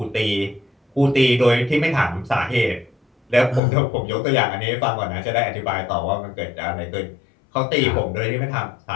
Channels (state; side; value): drops out; right; at 3.6 s